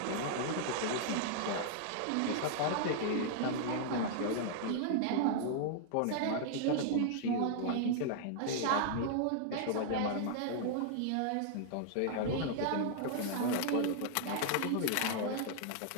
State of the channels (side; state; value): both; different; correlation -0.01